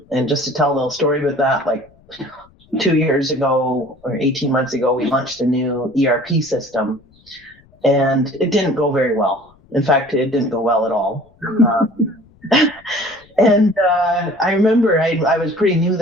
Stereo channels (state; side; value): noise; left; rumble, 30 dB below the sound